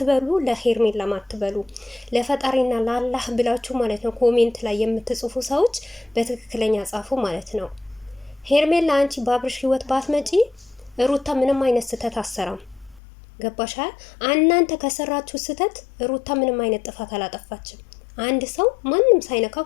ለሄርሜላ ማትበሉ ለፈጣሪና ለአላህ ብላችሁ ማለት ነው ኮሜንት ላይ የምትጽፉ ሰዎች በትክክለኛ ጻፉ ማለት ነው። ሄርሜላ አንቺ በአብርሽ ህይወት ባትመጪ ሩታ ምንም አይነት ስህተት አሰራም። ገባሻል? እናንተ ከሰራችሁ ስህተት ሩታ ምንም አይነት ጥፋት አላጠፋችም። አንድ ሰው ማንም ሳይነካው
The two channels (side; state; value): right; drops out; at 13.0 s